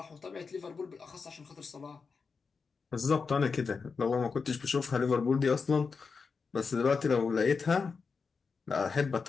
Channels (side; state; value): right; quieter; 5.1 dB